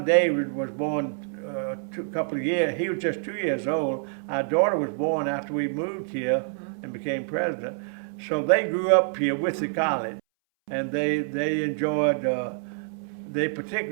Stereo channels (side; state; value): left; silent; 61 dB below the other